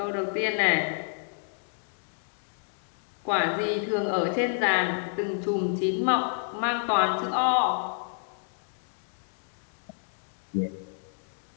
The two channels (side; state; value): right; silent; digital silence